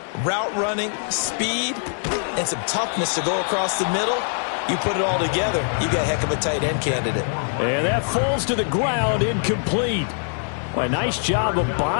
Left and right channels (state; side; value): silent; right; 64 dB below the other